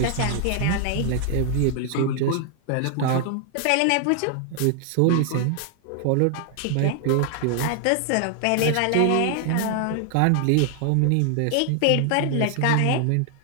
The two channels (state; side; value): different; both; correlation 0.00